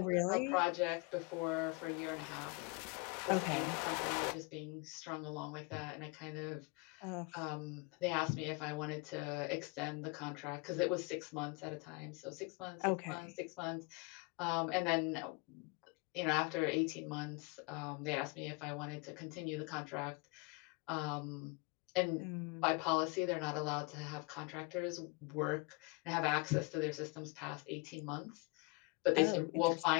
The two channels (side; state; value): right; quieter; 28.4 dB